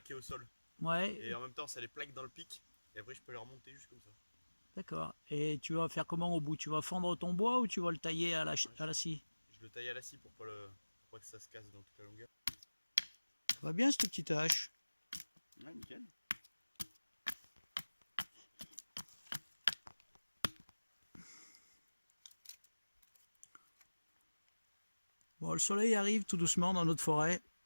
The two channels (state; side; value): inverted; both; correlation -1.00